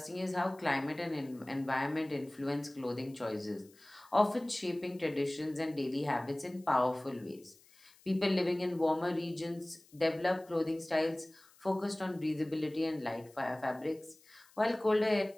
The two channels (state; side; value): noise; left; hiss, 27 dB below the sound